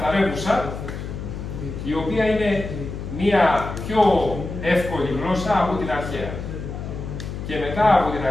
η οποία είναι μία πιο εύκολη γλώσσα από την αρχαία. Και μετά από την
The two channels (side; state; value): left; noise; hum, 7 dB below the sound